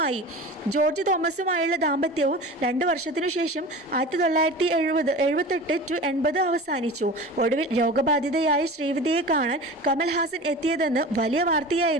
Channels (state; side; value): normal; both; correlation 0.35